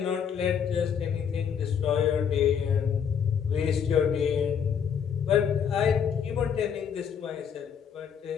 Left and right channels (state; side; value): quieter; right; 7.6 dB